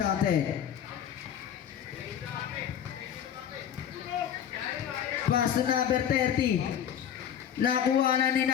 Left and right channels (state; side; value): quieter; right; 9.3 dB